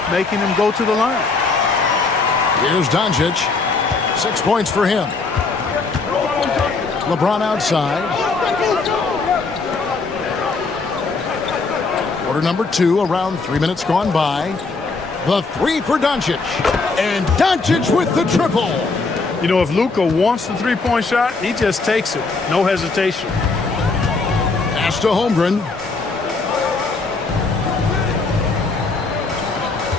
making him go to the line. Here's Doncic. 6 points for him. LeBron outside. Quarter number 2, around 3 minutes gone by. The 3 for Doncic. And Doncic with the triple. You know, if Luka wants the three-point shot, he just takes it. No hesitation. Pass to Holmgren.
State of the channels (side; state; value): right; quieter; 4.0 dB